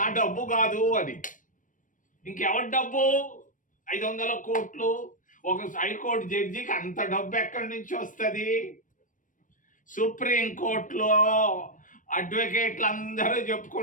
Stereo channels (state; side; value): late; right; 0.38 ms